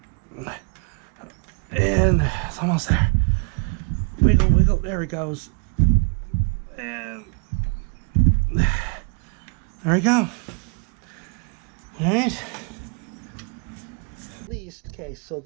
And it's almost there. Wiggle, wiggle, there it goes. And there we go. Alright. At least, okay, so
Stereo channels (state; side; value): quieter; left; 38.3 dB